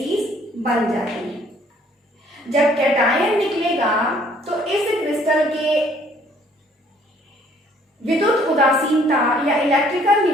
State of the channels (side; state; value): both; normal; correlation 0.61